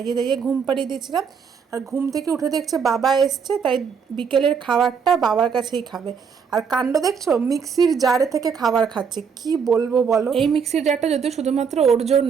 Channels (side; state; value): left; quieter; 6.4 dB